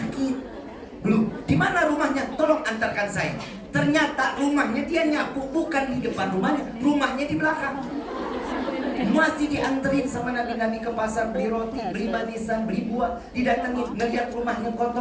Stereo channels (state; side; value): identical; both; correlation 1.00